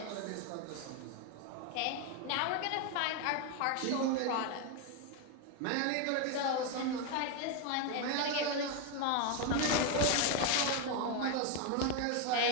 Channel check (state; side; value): different; both; correlation 0.01